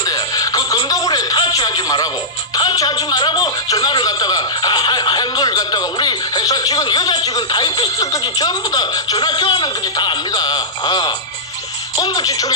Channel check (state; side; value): normal; both; correlation -0.13